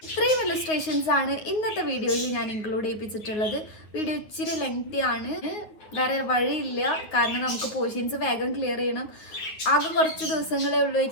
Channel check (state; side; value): late; right; 9.3 ms